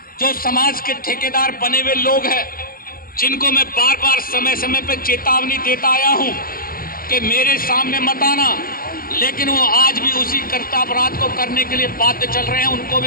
जो समाज के ठेकेदार बने हुए लोग हैं, जिनको मैं बार बार समय समय पर चेतावनी देता आया हूं कि मेरे सामने मत आना, लेकिन वो आज भी उसी कर्तव्यपराध को करने के लिए बाध्य चल रहे हैं, उनको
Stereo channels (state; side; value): late; right; 0.42 ms